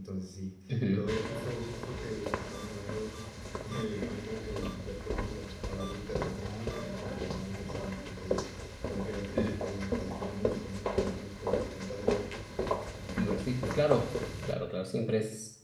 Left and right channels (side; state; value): both; identical; correlation 1.00